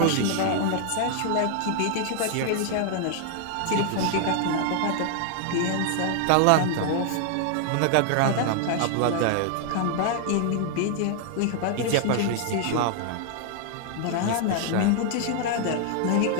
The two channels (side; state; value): both; different; correlation 0.00